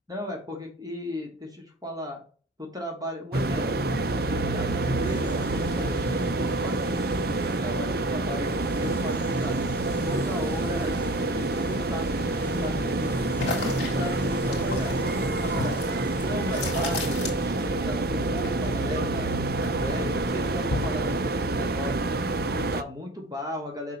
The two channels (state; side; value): normal; both; correlation 0.40